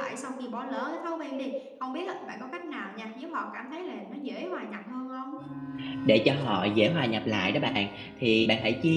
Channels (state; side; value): identical; both; correlation 1.00